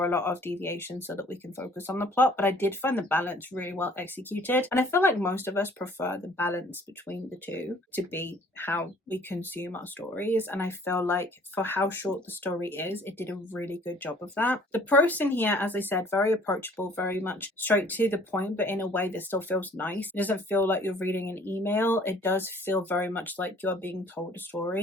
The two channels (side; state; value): both; normal; correlation 0.55